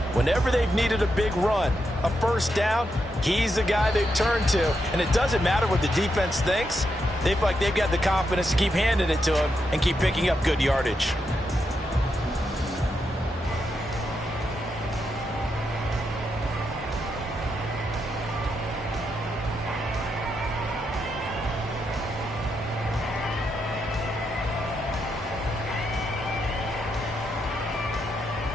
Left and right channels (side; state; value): both; normal; correlation 0.83